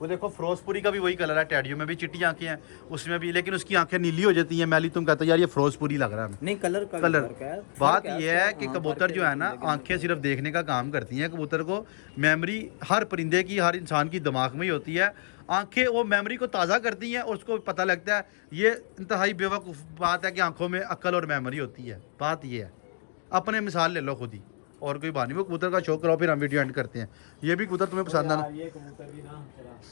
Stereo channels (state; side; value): silent; right; digital silence